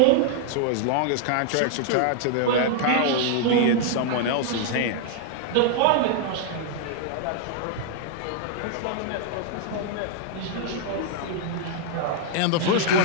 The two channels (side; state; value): both; different; correlation 0.00